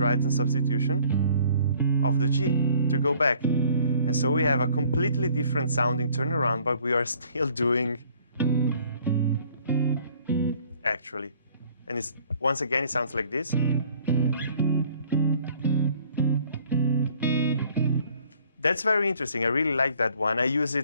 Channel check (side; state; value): both; inverted; correlation -0.57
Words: substitution of the G to go back. And so we have a completely different sounding turnaround, but we are still doing actually. And it's, once again, it sounds like this. That's very interesting. I really like that one. I use